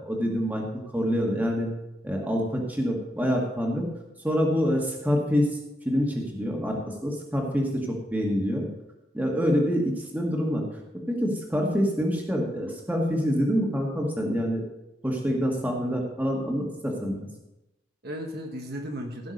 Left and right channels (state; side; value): normal; both; correlation 0.83